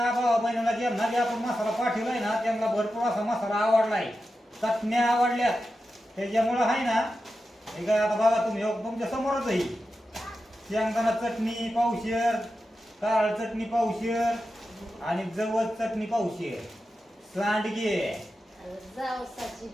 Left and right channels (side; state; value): both; normal; correlation 0.91